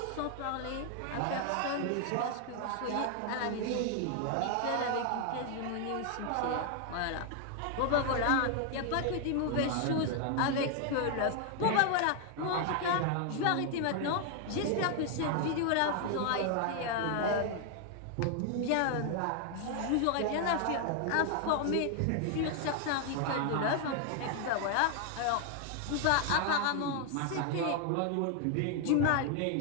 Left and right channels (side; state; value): both; different; correlation 0.00